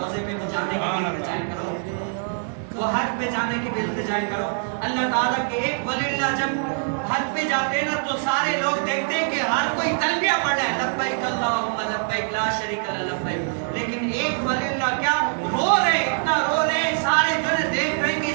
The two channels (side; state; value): left; silent; 63 dB below the other